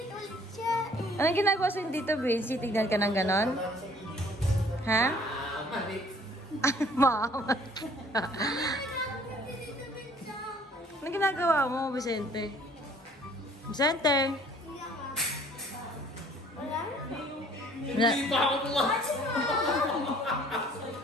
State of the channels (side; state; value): both; normal; correlation 0.56